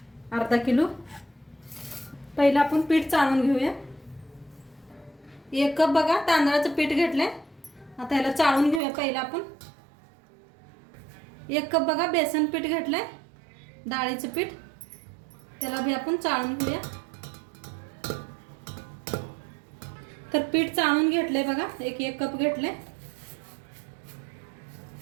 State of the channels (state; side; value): drops out; left; at 8.8 s